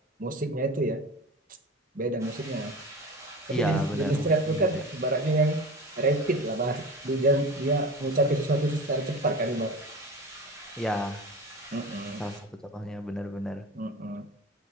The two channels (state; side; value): normal; both; correlation 0.33